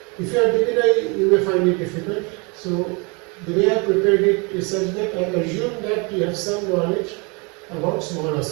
if you are beginner you may find it difficult. So the way I prepared it is such that I assume that you have some knowledge about small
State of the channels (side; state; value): left; quieter; 31.1 dB